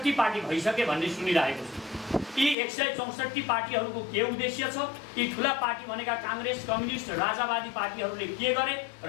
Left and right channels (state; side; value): drops out; right; at 2.6 s